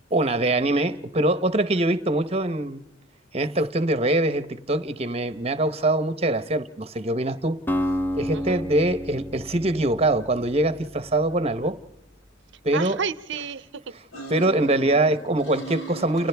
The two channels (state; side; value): normal; both; correlation 0.40